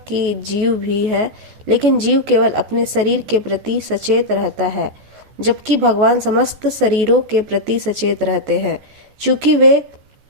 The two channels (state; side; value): late; left; 14 ms